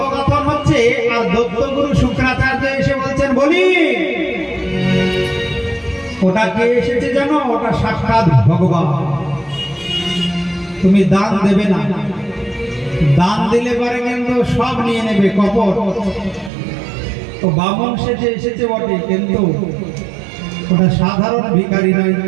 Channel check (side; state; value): left; drops out; at 16.5 s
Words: হচ্ছে। আর দত্তগুরু শুক্রাচার্য এসে বলছেন, বলি ওটা কে এসেছে জানো? ওটা সাক্ষাৎ ভগবান। তুমি দান দেবে না, দান দিলে পরে কিন্তু সব নিয়ে নেবে, কপট। তো বামন সেজে এসেছে বটে, কিন্তু ওটা সাধারণ ভিখারি নয়।